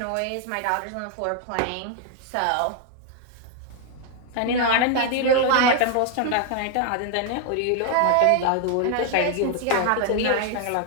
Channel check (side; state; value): both; different; correlation 0.00